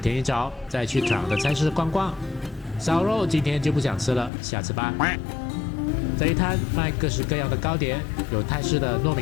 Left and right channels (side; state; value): right; drops out; at 4.3 s